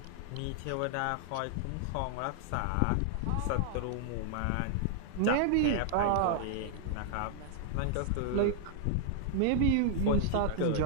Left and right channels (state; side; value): different; both; correlation 0.00